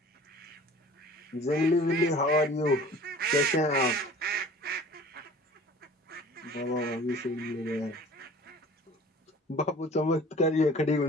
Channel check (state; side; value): normal; both; correlation 0.46